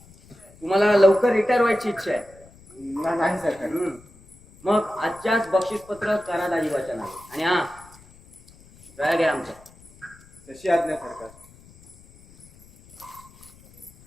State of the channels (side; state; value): left; noise; rumble, 24 dB below the sound